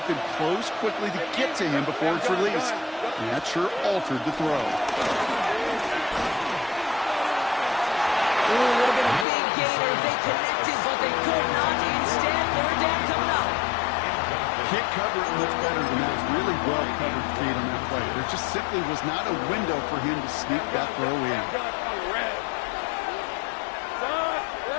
can close quickly to get to him before it's released. And that sure altered the throw. Ooh, would have been a big gainer if they connected, but they could not. Instead, third down coming up. Can't cover it much better than that. Really well covered, Kate, on that play. There just simply was not a window for him to sneak that throw in.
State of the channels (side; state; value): right; drops out; at 9.2 s